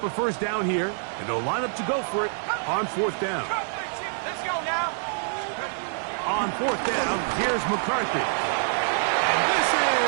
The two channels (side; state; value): left; silent; digital silence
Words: a first down here, and they'll line up to go for it on fourth down. Let's go now. On fourth down, here's McCarthy. And this